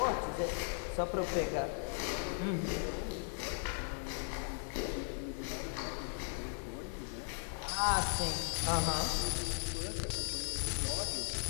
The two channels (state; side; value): silent; right; 53 dB below the other